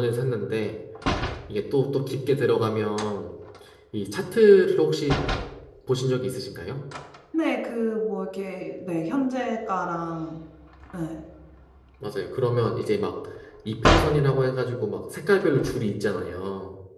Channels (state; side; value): identical; both; correlation 1.00